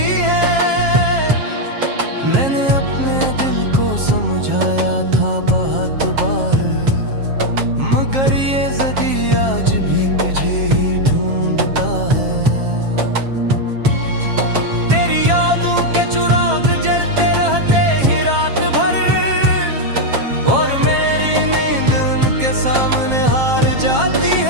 है। मैंने अपने दिल को समझाया था बहुत बार, मगर ये ज़दी आज भी तुझे ही ढूंढता है। तेरी यादों के चिराग जलते रहते ही रात भर, और मेरी नींद उनके सामने हार जाती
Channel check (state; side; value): late; left; 7.5 ms